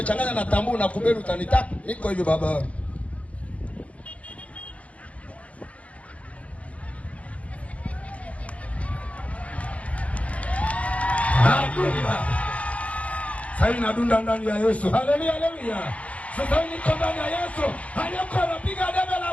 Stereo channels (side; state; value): right; late; 0.065 ms